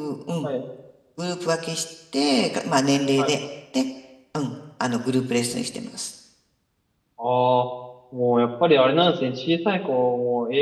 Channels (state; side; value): identical; both; correlation 1.00